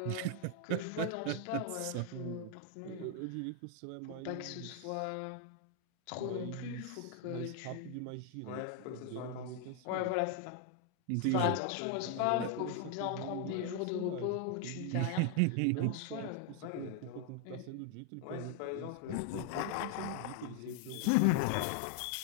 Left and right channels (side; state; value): both; different; correlation 0.00